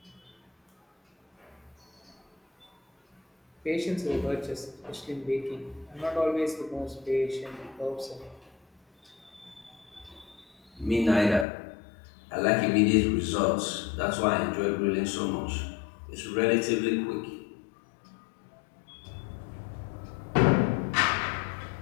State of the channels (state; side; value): drops out; right; at 11.5 s